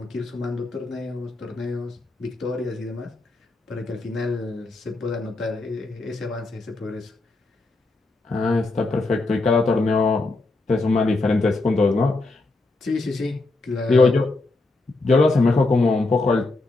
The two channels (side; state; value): right; quieter; 3.2 dB